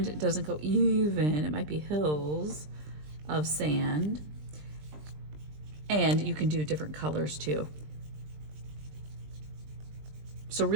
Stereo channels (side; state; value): left; late; 20 ms